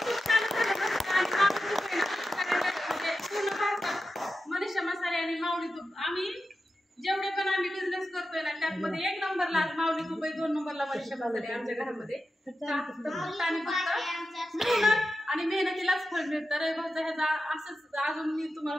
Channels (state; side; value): normal; both; correlation 0.91